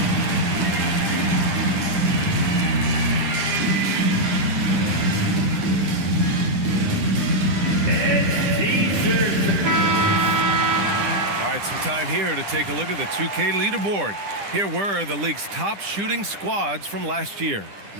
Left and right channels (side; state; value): left; late; 10 ms